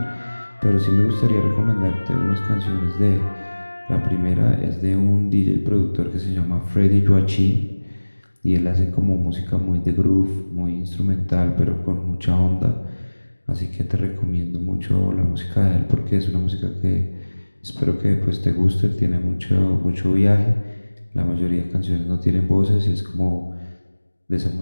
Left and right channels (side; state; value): both; inverted; correlation -1.00